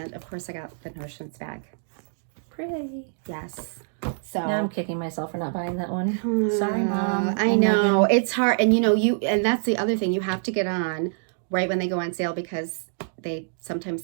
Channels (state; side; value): silent; left; digital silence